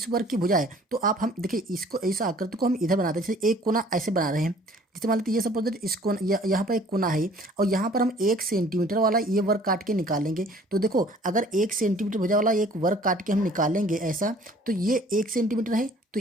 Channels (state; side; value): normal; both; correlation 0.54